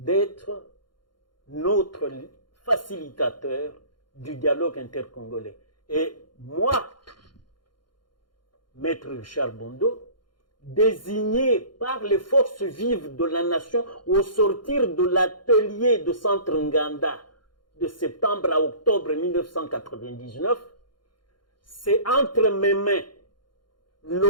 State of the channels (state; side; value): late; right; 0.71 ms